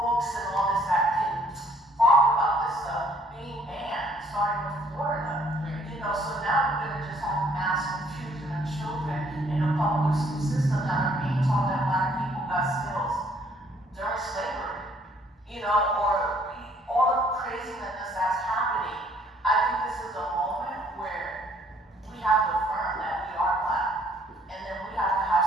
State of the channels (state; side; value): normal; both; correlation 0.63